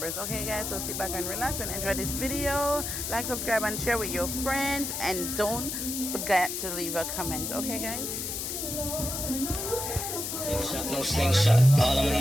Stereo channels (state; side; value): noise; left; hiss, 4 dB below the sound